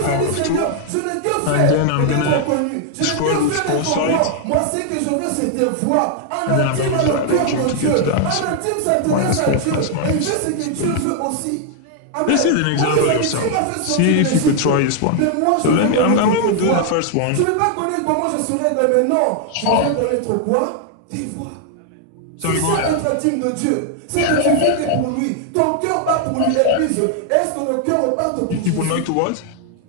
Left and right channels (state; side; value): different; both; correlation 0.00